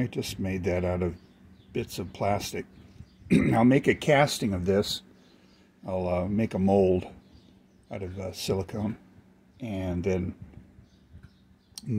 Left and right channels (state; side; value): identical; both; correlation 1.00